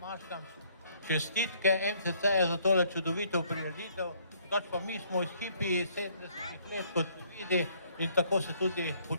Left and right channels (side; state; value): both; inverted; correlation -0.64